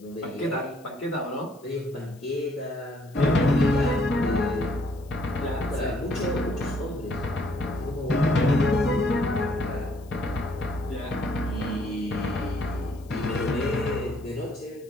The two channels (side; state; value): left; noise; hiss, 28 dB below the sound